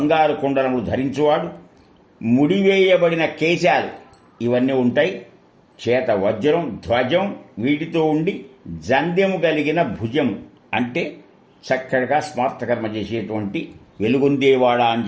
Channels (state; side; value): identical; both; correlation 1.00